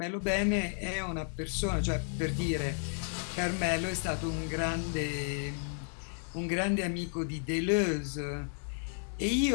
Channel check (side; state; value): right; silent; 56 dB below the other